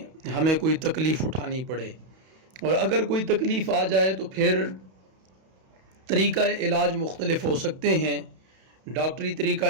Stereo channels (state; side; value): late; left; 31 ms